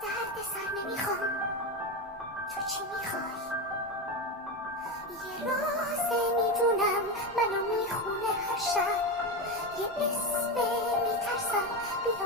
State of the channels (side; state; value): both; normal; correlation 0.16